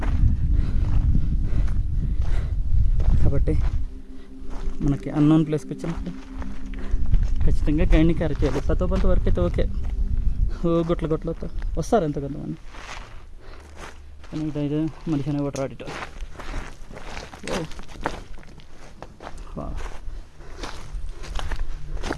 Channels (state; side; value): identical; both; correlation 1.00